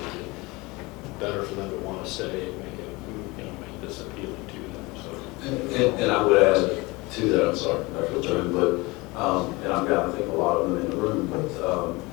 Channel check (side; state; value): right; quieter; 23.7 dB